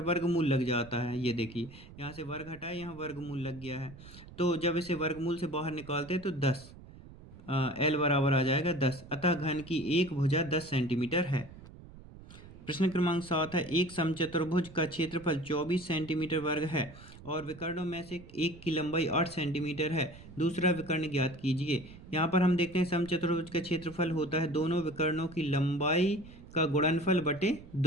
लग जाता है, ये देखिए यहाँ से वर्ग हटाए, यहाँ वर्गमूल लग गया है। तो जब इसे वर्गमूल से बाहर निकालते हैं तो 10, l बराबर आ जाएगा 10, अतः घन की एक भुजा 10 सेंटीमीटर है। प्रश्न क्रमांक 7 है, एक समचतुर्भुज का क्षेत्रफल 24 सेंटीमीटर वर्ग है और विकर्णों में से एक की लंबाई 8 सेंटीमीटर है, दूसरा विकर्ण ज्ञात कीजिए। यहाँ पर हम देखते हैं समचतुर्भुज का क्षेत्रफल होता है दोनों विकर्णों की लंबाई का गुणनफल बटे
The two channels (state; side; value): noise; right; rumble, 18 dB below the sound